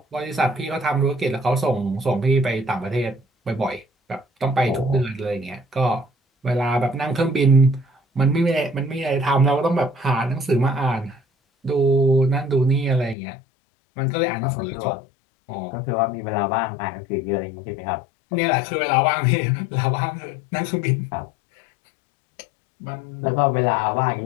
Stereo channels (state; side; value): drops out; right; at 13.2 s